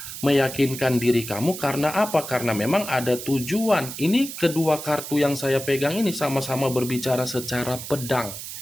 meyakinkan diri kamu karena apa? Karena memang ada tujuan. Ini kedua kartu yang saya pegang ini sama-sama berbicara secara pedang.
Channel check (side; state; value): right; noise; hiss, 9 dB below the sound